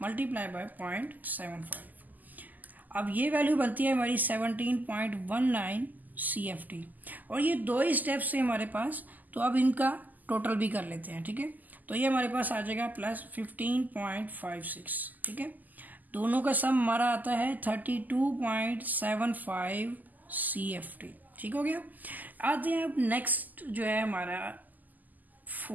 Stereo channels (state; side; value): late; left; 0.083 ms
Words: मल्टीप्लाई बाय 0.75। अब ये वैल्यू बनती है हमारी 17.19 CFT। और ये दो ही स्टेप्स से हमारे पास, तो अब इनका टोटल भी कर लेते हैं। ठीक है, तो ये हमारे पास आ जाएगा प्लस 15.56। ठीक है, दोनों का सम हमारा आता है 32.75 CFT। ठीक हो गया। आते हैं अब नेक्स्ट जो है हमारा